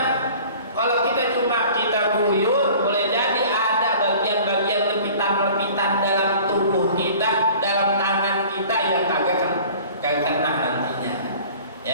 Kalau kita cuma guyur, boleh jadi ada bagian-bagian lepitan-lepitan dalam tubuh kita, dalam tangan kita yang kagak kena nantinya.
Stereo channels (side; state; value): both; inverted; correlation -0.46